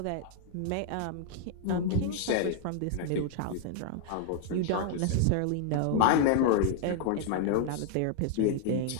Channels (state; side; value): different; both; correlation 0.00